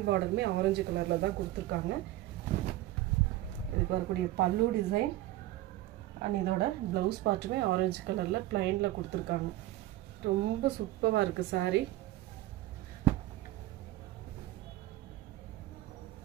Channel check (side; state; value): left; quieter; 16.2 dB